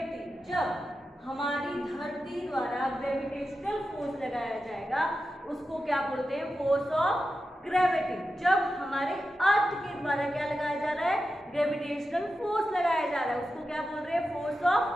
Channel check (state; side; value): normal; both; correlation 0.91